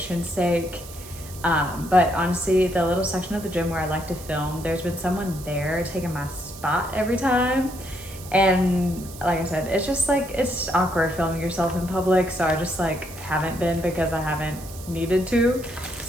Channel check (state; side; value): noise; right; hiss, 16 dB below the sound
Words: sake. But honestly, the little section of the gym where I like to film, there's been someone there taking my spot every time. And like I said, it's just like, it's awkward filming yourself in public. So I just like haven't been, because I haven't needed to.